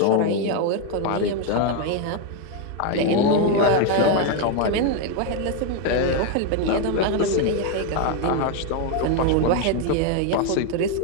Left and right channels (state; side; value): different; both; correlation 0.01